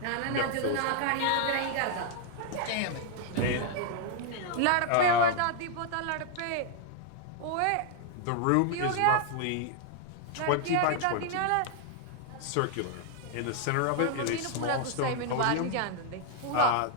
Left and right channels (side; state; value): both; different; correlation 0.00